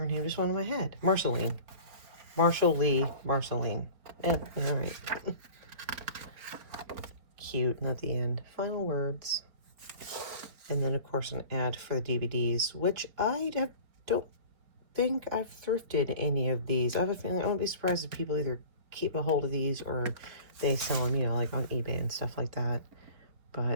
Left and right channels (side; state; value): left; late; 4.2 ms